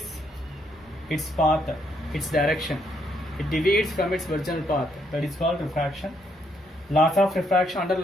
its path, its direction. It deviates from its original path. That is called refraction. Laws of refraction. Under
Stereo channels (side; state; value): both; normal; correlation 0.73